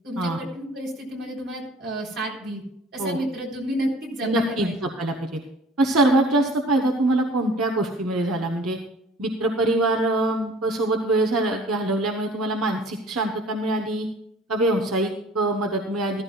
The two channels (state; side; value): normal; both; correlation 0.49